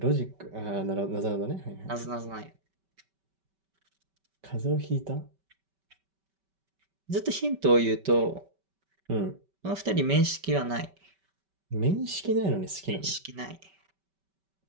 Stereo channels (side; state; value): left; late; 5.2 ms